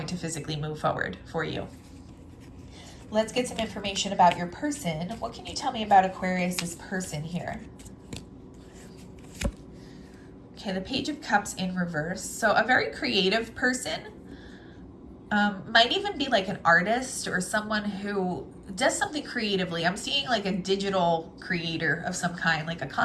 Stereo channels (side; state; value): both; identical; correlation 1.00